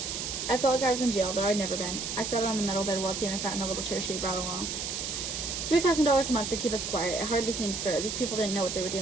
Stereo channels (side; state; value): right; noise; hiss, 4 dB below the sound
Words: I felt like I was in jail, though I'd never been. I sat on the metal bed while Tina sat in the little chair she had brought along. $3,000 a month to keep us quiet. It hardly seems fair. These people didn't know what they were